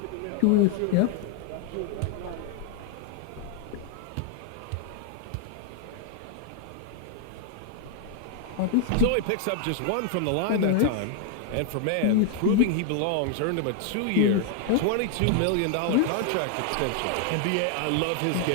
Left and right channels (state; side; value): different; both; correlation 0.00